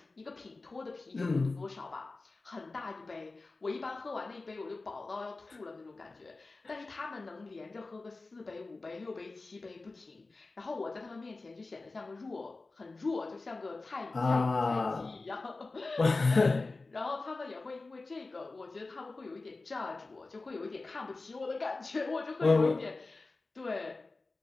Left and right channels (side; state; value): right; quieter; 3.5 dB